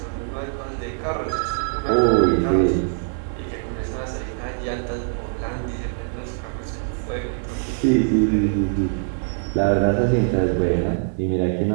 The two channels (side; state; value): left; silent; digital silence